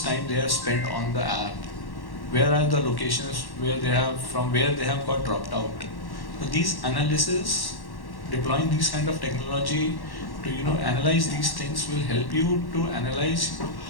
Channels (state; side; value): late; right; 1.1 ms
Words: time they have spent on the app, where are the locations where they have got dropped out. So these analysis, deploying these kind of technology to analyze these things will help you to analyze